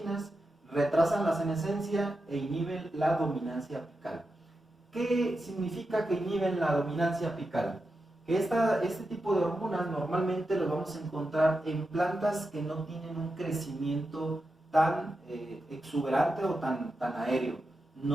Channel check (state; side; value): normal; both; correlation 0.89